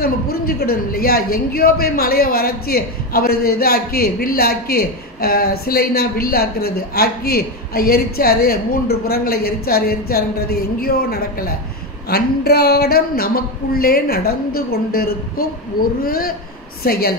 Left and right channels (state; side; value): normal; both; correlation 0.13